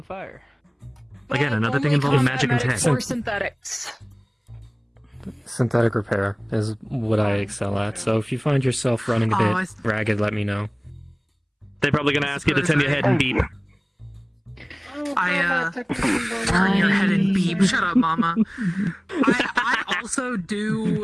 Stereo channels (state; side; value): identical; both; correlation 1.00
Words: fire. Again, another thing Only involving combat magic and tech. medics or synthetics. Synthetic repair is what I excel at, so if you find yourself running a Oh, bit ragged, let me know. They're probably gonna ask you to turn your head and beep. Turn your head and beep. Shut up, mama. I also